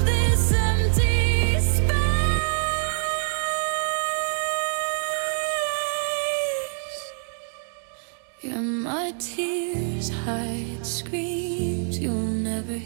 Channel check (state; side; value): silent; left; digital silence